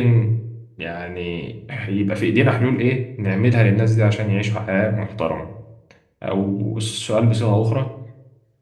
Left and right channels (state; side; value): identical; both; correlation 1.00